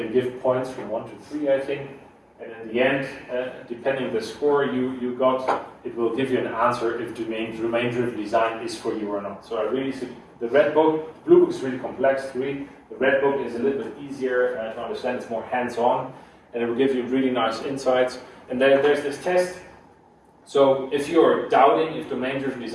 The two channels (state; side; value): identical; both; correlation 1.00